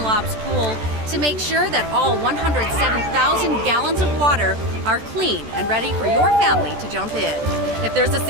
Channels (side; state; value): left; late; 14 ms